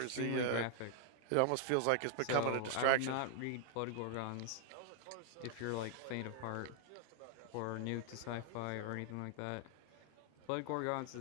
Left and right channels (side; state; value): both; different; correlation 0.00